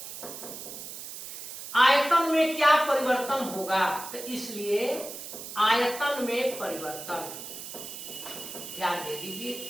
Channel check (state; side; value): noise; right; hiss, 10 dB below the sound